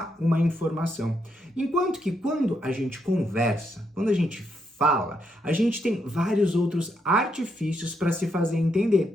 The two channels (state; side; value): normal; both; correlation 0.79